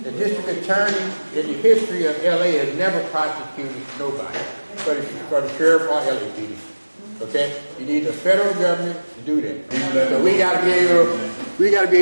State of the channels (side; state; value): both; inverted; correlation -1.00